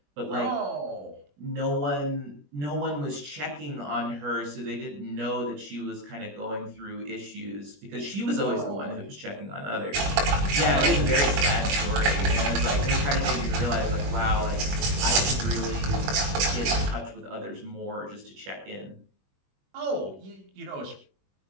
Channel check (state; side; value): late; left; 21 ms